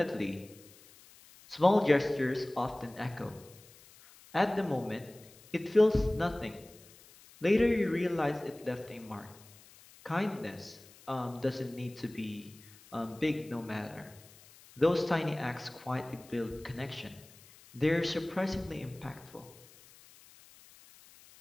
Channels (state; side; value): noise; left; hiss, 23 dB below the sound